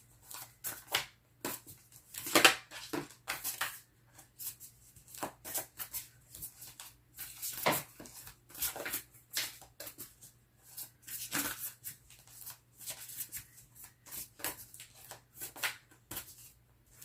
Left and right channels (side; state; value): both; identical; correlation 1.00